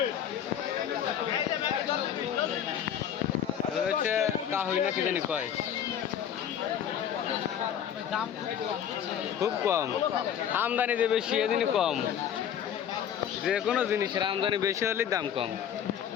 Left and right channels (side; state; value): right; quieter; 9.4 dB